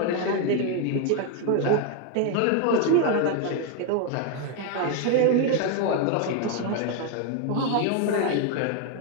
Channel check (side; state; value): both; different; correlation 0.01